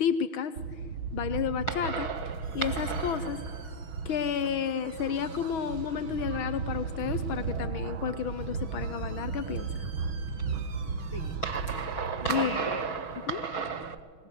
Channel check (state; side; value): late; right; 6.2 ms